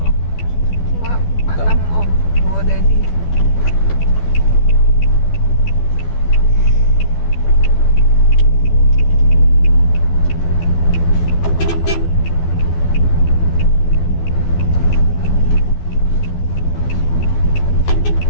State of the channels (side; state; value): right; late; 12 ms